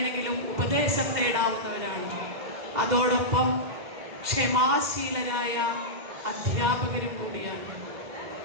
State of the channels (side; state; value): left; late; 2.1 ms